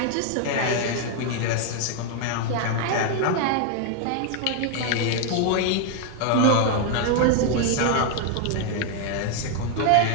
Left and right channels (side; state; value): both; different; correlation 0.00